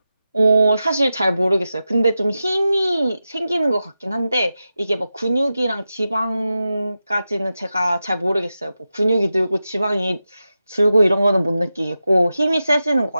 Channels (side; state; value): both; inverted; correlation -0.91